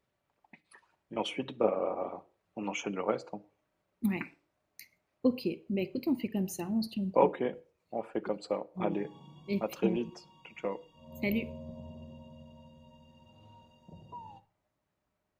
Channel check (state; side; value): identical; both; correlation 1.00